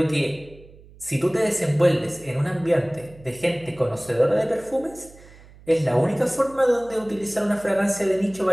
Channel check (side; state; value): right; noise; hum, 23 dB below the sound